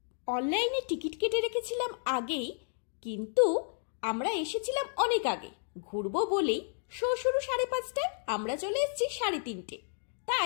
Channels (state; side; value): silent; right; digital silence